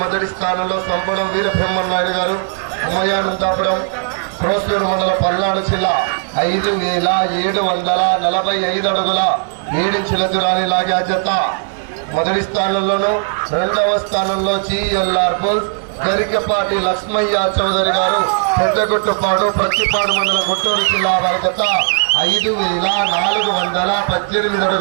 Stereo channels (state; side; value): silent; left; 66 dB below the other